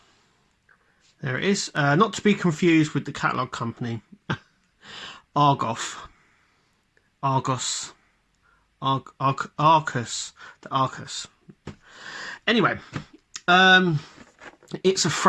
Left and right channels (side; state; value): both; identical; correlation 1.00